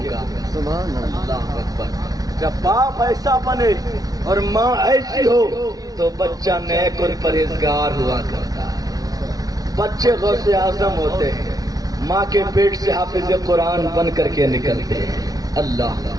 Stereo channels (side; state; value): left; late; 0.18 ms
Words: سبحان اللہ اکبر۔ جب باپ ایسا بنے اور ماں ایسی ہو تو بچہ نیک اور پرہیزگار ہوا کرتا ہے۔ بچے غوث اعظم ہوتے ہیں، ماں کے پیٹ سے حافظ قرآن بن کر کے نکلتے ہیں۔ اللہ